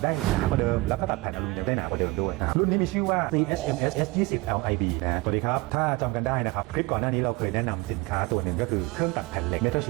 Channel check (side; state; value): left; quieter; 22.6 dB